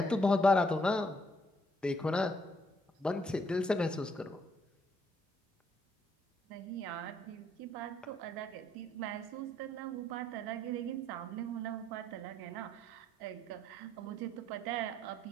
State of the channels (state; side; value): normal; both; correlation 0.70